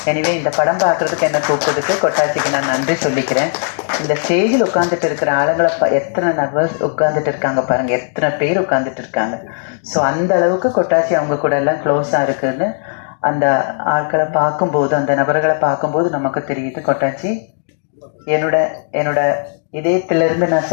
எனிவே இந்த படம் பார்க்குறதுக்கு என்ன கூப்பிட்டதுக்கு கொட்டாச்சிக்கு நான் நன்றி சொல்லிக்கிறேன். இந்த ஸ்டேஜில் உட்காந்துட்டு இருக்கிற ஆளுங்களை எத்தனை நர்வஸ் உட்காந்துட்டு இருக்காங்க பாருங்கள், எத்தனை பேர் உட்காந்துட்டு இருக்காங்க. ஸோ அந்த அளவுக்கு கொட்டாச்சி அவங்க கூட எல்லாம் க்ளோஸாக இருக்குதுன்னு அந்த ஆட்களை பார்க்கும்போது, அந்த நபர்களை பார்க்கும்போது நமக்கு தெரியுது. கொட்டாச்சி என்னோட இதயத்திலிருந்து நான்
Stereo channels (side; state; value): right; silent; digital silence